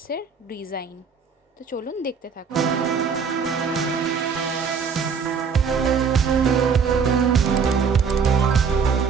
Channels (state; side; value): quieter; left; 6.0 dB